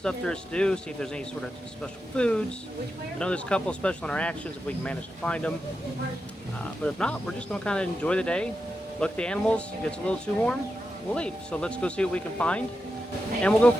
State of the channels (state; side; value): normal; both; correlation 0.89